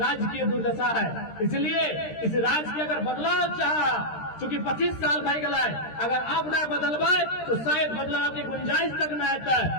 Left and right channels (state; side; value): late; right; 13 ms